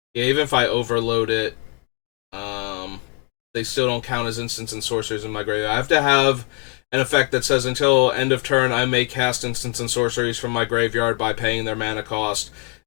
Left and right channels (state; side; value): quieter; right; 30.6 dB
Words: Yeah, even if I overload it, they still don't count as instants and sorceries in my graveyard. I have to have an effect that says until end of turn, I may cast instants and sorceries from my graveyard by paying their mana cost.